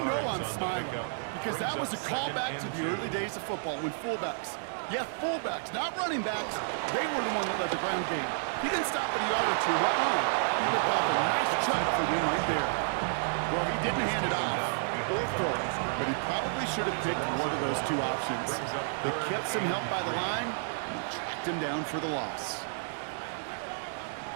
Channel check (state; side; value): silent; left; digital silence